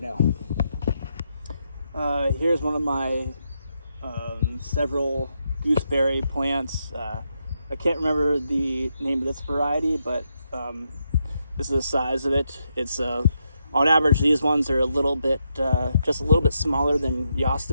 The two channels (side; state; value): both; inverted; correlation -0.82